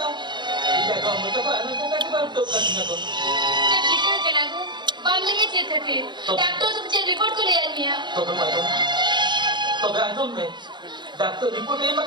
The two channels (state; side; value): late; left; 0.22 ms